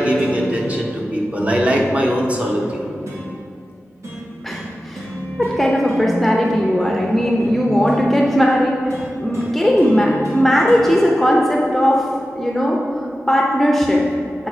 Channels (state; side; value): normal; both; correlation 0.93